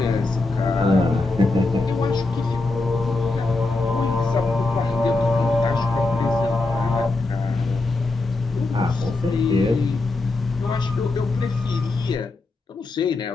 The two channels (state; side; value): quieter; right; 3.3 dB